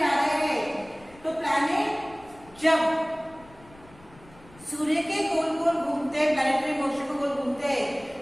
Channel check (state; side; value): noise; left; rumble, 24 dB below the sound